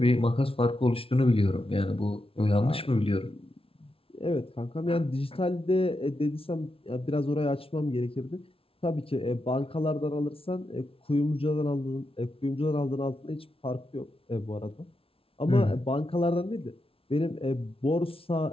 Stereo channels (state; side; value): late; right; 0.26 ms